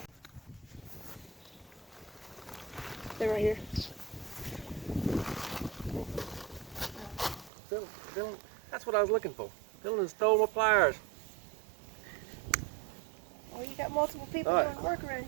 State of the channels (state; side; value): drops out; left; at 7.5 s